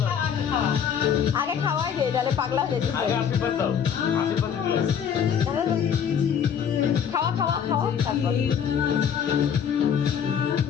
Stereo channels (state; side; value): quieter; right; 7.9 dB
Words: দাও আগে খাওয়াই দে তাহলে পাগলা হয়ে যেতে আগে আশীর্বাদ দাও আশীর্বাদ দিলে খাওয়া খাওয়া খাওয়া তারপর